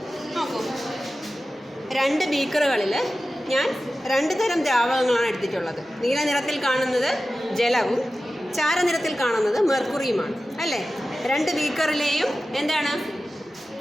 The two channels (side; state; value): both; normal; correlation 0.94